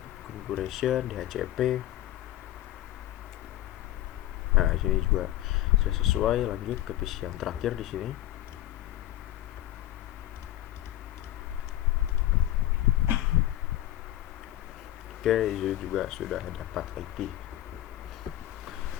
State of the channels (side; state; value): right; quieter; 14.4 dB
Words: configuration, DHCP. Nah, di sini juga sudah sesuai. Lanjut ke PC yang terakhir di sini. Oke, ini juga sudah dapat IP.